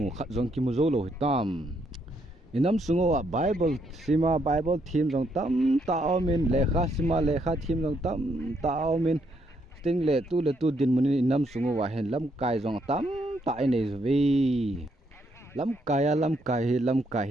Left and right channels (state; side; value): normal; both; correlation 0.74